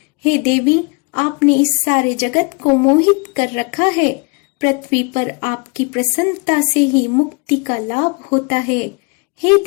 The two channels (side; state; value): right; quieter; 31.0 dB